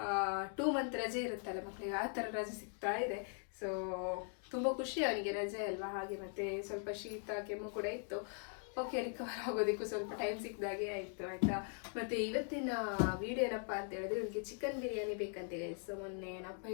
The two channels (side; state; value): right; silent; 51 dB below the other